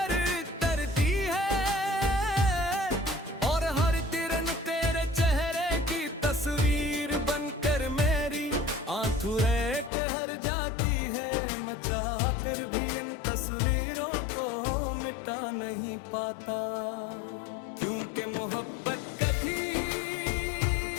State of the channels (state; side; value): drops out; right; at 9.9 s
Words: चाह कर भी इन तस्वीरों को मिटा नहीं पाता क्योंकि मोहब्बत कभी